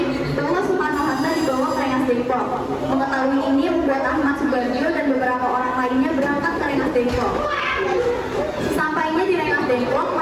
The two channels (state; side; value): identical; both; correlation 1.00